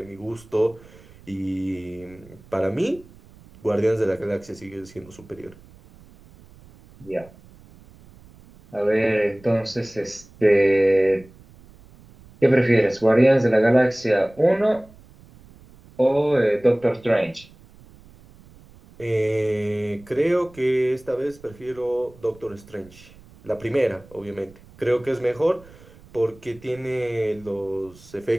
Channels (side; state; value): right; noise; rumble, 24 dB below the sound